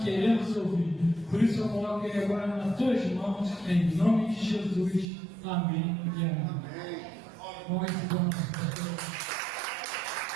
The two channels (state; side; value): drops out; left; at 5.1 s